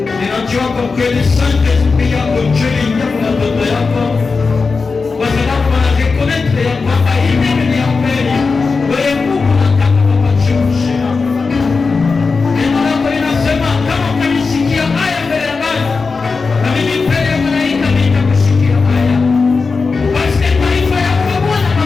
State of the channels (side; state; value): right; quieter; 4.5 dB